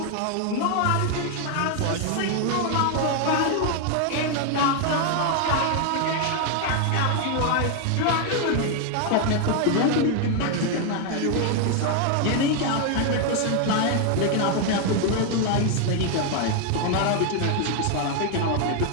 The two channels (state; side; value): different; both; correlation 0.00